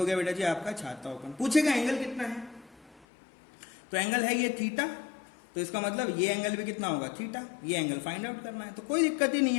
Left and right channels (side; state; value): right; drops out; at 3.1 s